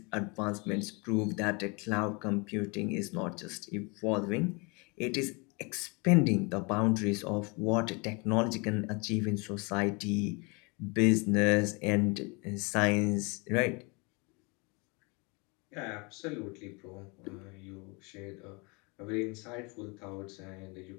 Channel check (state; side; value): quieter; right; 29.7 dB